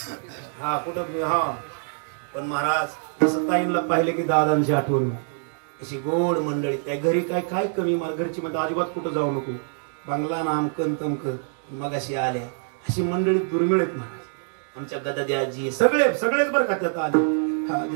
हा कुठं हा पण महाराज तसं ताईंना पाहिलं की दादांची आठवण अशी गोड मंडळी काय घरी काय काय कमी मला घरची म्हणजे अजिबात कुठं जाऊ नको बंगला नामकन तमकन मग अशी आल्या अशी मंडळी दुर्मिळ आहेत महाराज आमच्या गदाद्याजी सगळेच बरं का त्यात आले हा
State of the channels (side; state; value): left; silent; 62 dB below the other